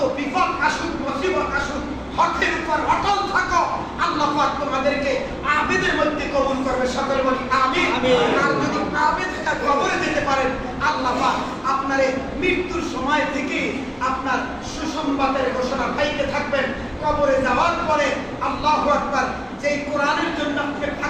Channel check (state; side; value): identical; both; correlation 1.00